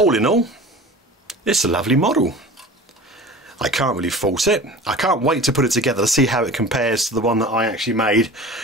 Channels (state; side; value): normal; both; correlation 0.39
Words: in all, it's a lovely model. I can't really fault it. I can't wait to put it together to see how it compares to the one that I actually made